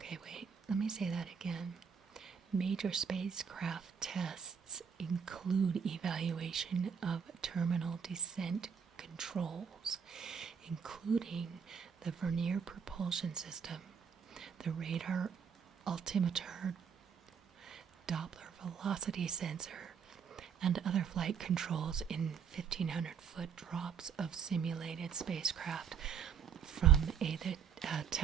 wait, let me say that again. Major spacecraft tests include evaluation of terminal descent controls, including the vernier propulsion system, the radar, altimeter, Doppler velocity sensor, and other flight controls in 1,500-foot drops of simulated spacecraft from a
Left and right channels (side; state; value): left; quieter; 7.0 dB